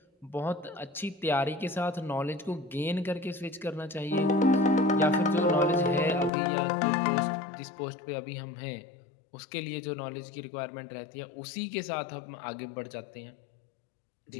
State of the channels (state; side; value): drops out; right; at 6.3 s